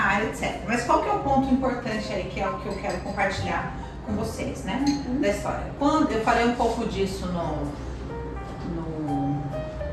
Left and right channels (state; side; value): identical; both; correlation 1.00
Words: etc. Mas qual que é o ponto importante aí, que é o que eu quero compartilhar com vocês, né? Da história. Quando eu falei um pouco disso no